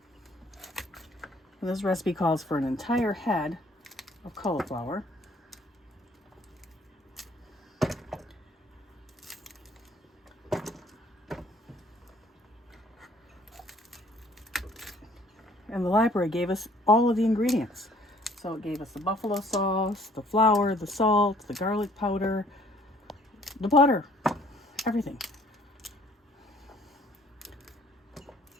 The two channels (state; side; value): normal; both; correlation 0.59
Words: And this recipe calls for an entire head of cauliflower. And the library gave us all of the ingredients. So it gave us the buffalo sauce, the flour, the salt, the garlic powder, the butter, everything.